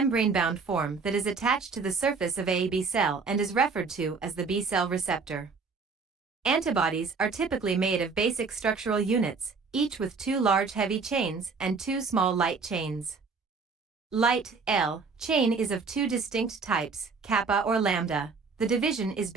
form that is attached to the surface of a B cell and is referred to as the B cell receptor. Antibodies are typically made of basic structural units, each with 2 large heavy chains and 2 small light chains. Light L chain is of 2 distinct types, kappa or lambda. The division is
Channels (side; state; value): left; quieter; 4.8 dB